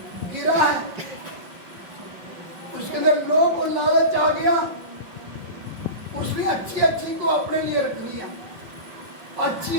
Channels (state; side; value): late; left; 5.6 ms